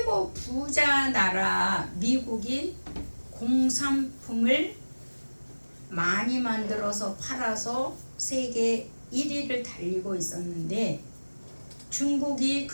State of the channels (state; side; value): inverted; both; correlation -1.00